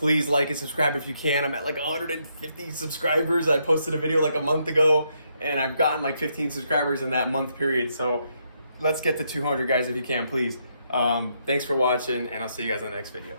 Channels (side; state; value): both; inverted; correlation -0.77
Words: like and subscribe if you can. I'm at like 150 subscribers. I posted a video like a month ago, and I've gotten like 15 subscribers in that month period. So let's get to 200, guys, if you can, please. Thanks for watching, and I'll see you guys in the next video.